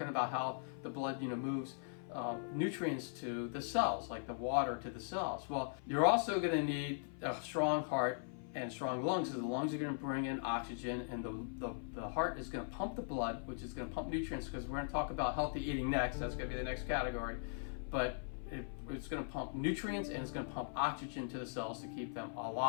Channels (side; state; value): right; silent; 51 dB below the other